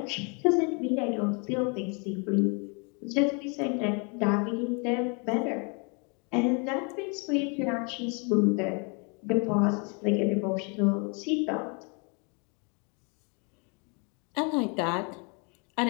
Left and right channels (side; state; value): right; quieter; 34.6 dB